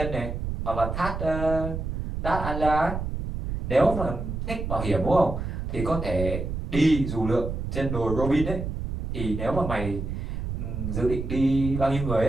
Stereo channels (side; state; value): right; noise; rumble, 4 dB below the sound